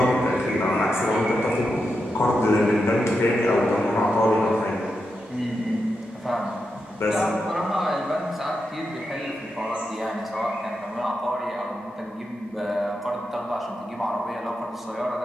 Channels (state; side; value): normal; both; correlation 0.87